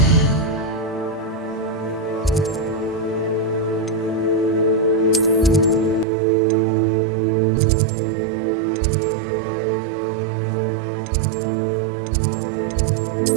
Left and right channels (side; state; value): left; drops out; at 6.1 s